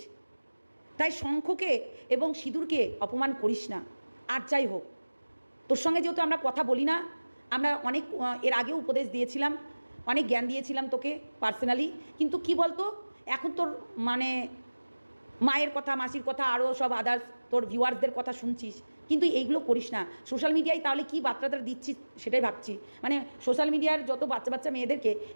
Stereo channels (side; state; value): both; inverted; correlation -1.00